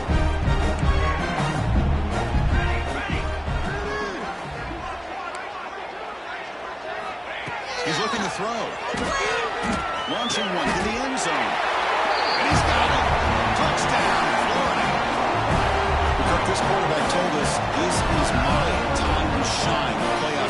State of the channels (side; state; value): both; identical; correlation 1.00